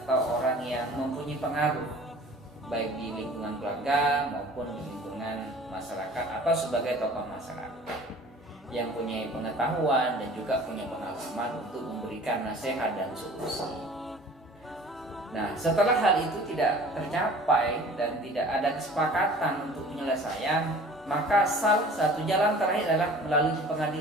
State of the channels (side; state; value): both; normal; correlation 0.46